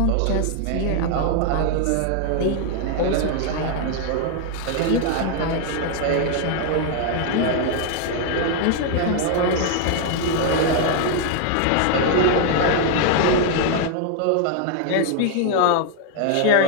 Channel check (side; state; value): both; different; correlation 0.00